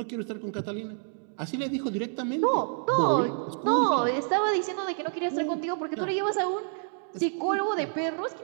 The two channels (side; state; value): left; silent; 59 dB below the other